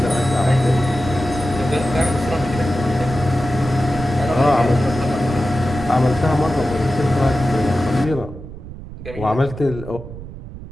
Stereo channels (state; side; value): noise; right; rumble, 13 dB below the sound